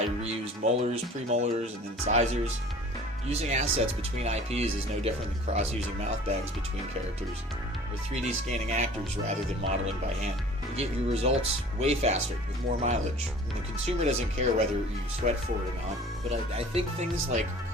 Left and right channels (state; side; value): normal; both; correlation 0.46